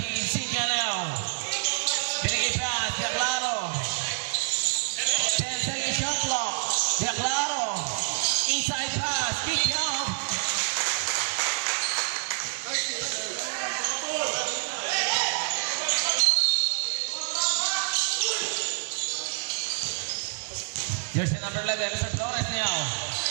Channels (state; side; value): silent; left; digital silence